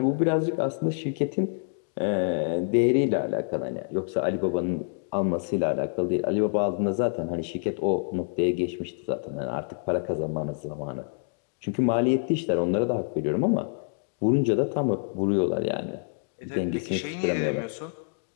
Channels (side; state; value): right; silent; digital silence